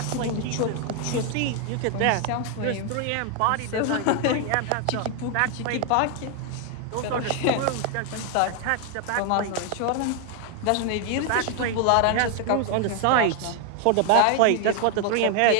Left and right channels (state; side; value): different; both; correlation 0.00